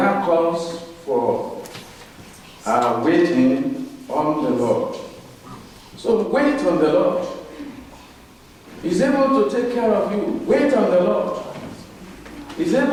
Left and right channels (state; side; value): identical; both; correlation 1.00